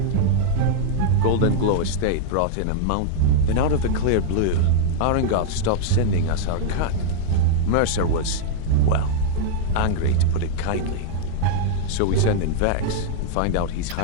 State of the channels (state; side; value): different; both; correlation -0.01